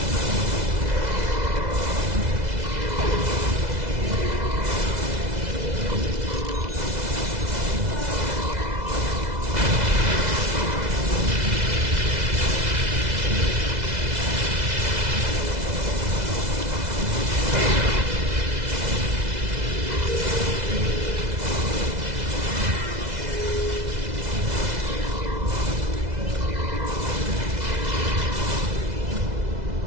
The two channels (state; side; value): late; left; 2.0 ms